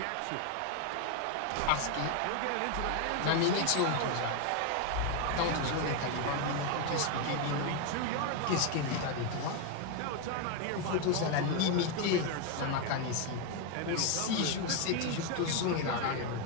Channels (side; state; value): both; different; correlation 0.01